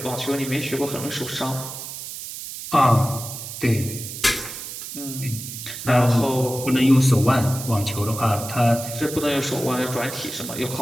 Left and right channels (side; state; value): right; noise; hiss, 9 dB below the sound